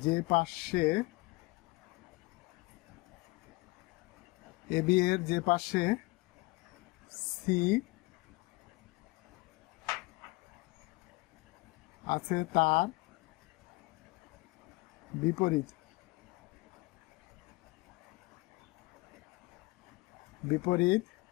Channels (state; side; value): quieter; right; 23.4 dB